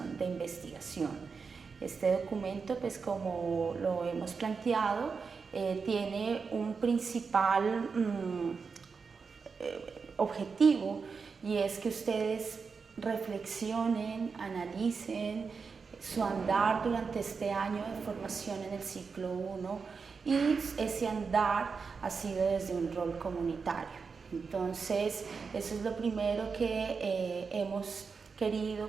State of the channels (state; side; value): quieter; left; 5.2 dB